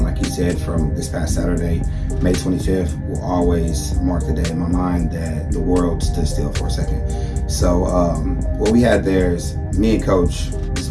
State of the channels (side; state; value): both; identical; correlation 1.00